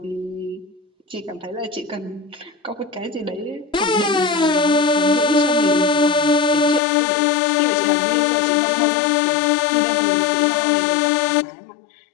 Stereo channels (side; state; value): right; drops out; at 6.8 s